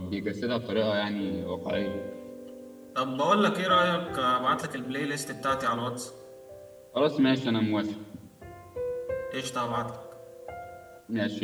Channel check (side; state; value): both; identical; correlation 1.00